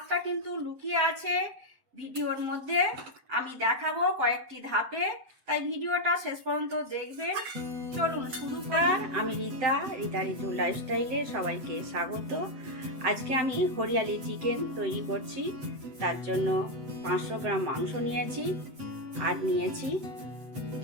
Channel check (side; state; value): left; late; 7.9 ms